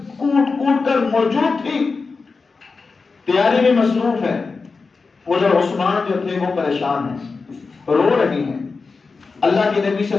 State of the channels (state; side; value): quieter; right; 4.4 dB